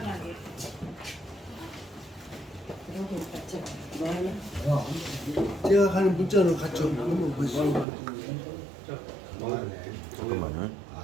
제가 가는 문자로 갔죠. 한번 보시죠. 잠깐만요.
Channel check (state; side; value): drops out; left; at 7.9 s